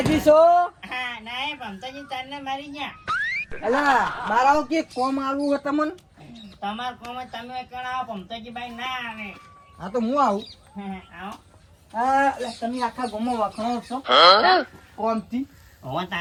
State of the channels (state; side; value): identical; both; correlation 1.00